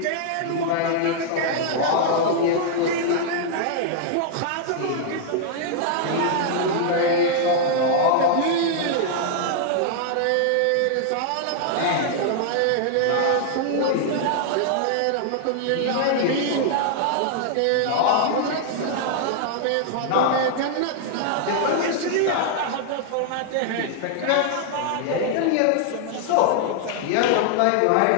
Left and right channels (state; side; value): different; both; correlation -0.01